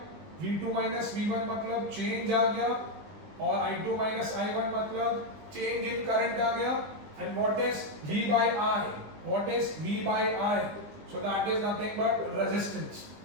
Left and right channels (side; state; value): left; late; 20 ms